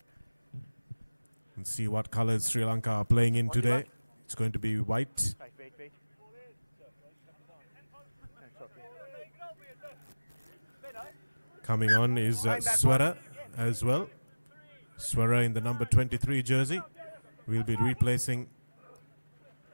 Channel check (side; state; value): both; inverted; correlation -1.00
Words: And see what colors Sri Lanka are playing in today. 41. It's going to be white. Right, wait. That's okay. Coming on is Swara as well. Swara in the number 23 jersey. We'll be replacing.